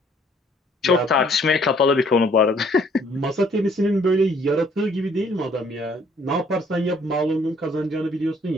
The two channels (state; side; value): normal; both; correlation 0.62